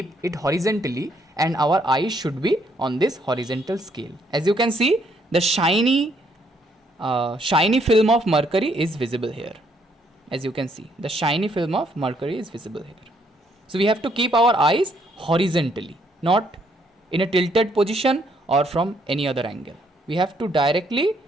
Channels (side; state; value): both; normal; correlation 0.70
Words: it horizontally, and our eyes should be on this horizontal scale. As you can see, the shiny film of mercury is visible here. As you can see, the shiny film of mercury is visible here. So we have to keep our eyes horizontally, not in a tilted position or from any other angle. We have to directly